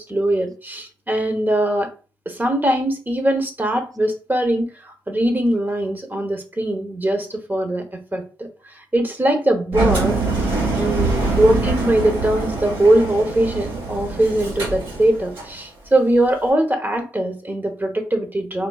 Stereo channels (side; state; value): both; normal; correlation 0.85